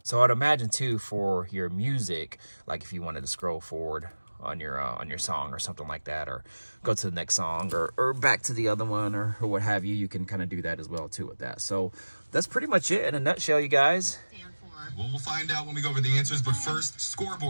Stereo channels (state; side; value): inverted; both; correlation -1.00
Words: so I'd imagine too for your music, like if you wanted to scroll forward on your song or something like that, or go to the next song or back to the other one or what have you, you can kind of do that as well too with that. So that's pretty much it in a nutshell, you guys. Well, we'll find out when we go over the answers, but first,